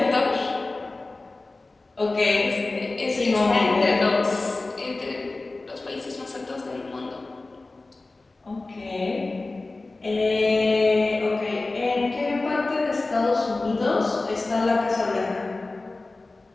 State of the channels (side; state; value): right; quieter; 3.3 dB